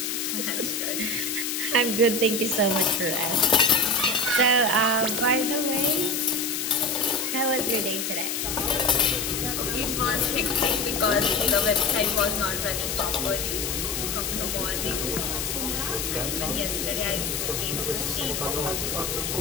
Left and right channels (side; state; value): left; noise; hiss, 2 dB below the sound